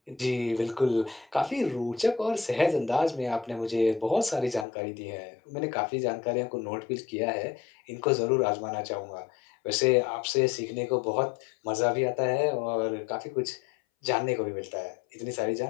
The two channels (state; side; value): drops out; right; at 4.7 s